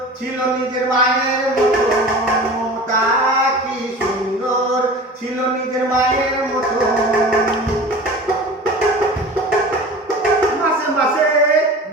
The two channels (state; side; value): normal; both; correlation 0.37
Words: ছিল নিজের মায়ের মতো। মমতা কি সুন্দর ছিল নিজের মায়ের মতো। মাসে মাসে